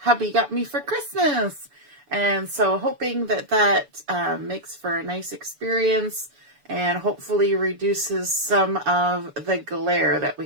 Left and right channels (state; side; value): late; left; 6.9 ms